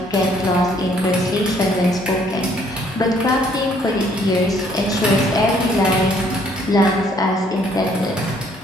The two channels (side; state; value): both; normal; correlation 0.64